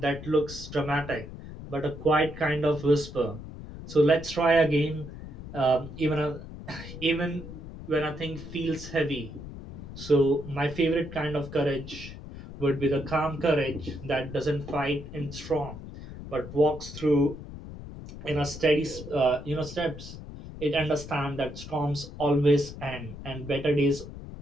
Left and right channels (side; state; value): left; noise; rumble, 12 dB below the sound